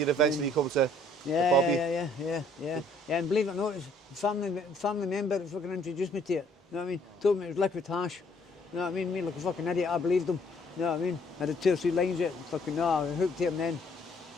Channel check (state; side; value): normal; both; correlation 0.62